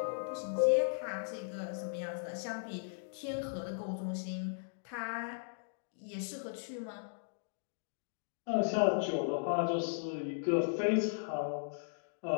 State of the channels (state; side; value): silent; right; digital silence